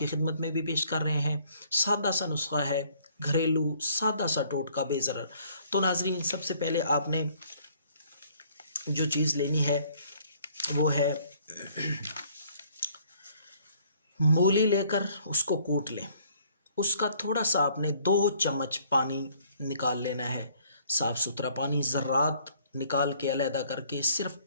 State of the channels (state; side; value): inverted; both; correlation -0.61